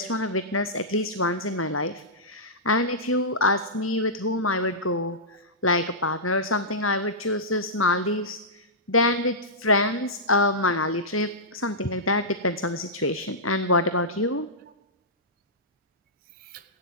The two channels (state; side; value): normal; both; correlation -0.15